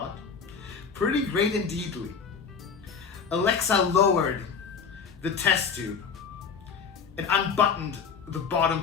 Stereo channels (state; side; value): quieter; right; 6.0 dB